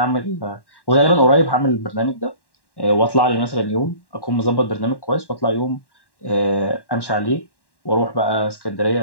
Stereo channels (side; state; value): right; late; 1.1 ms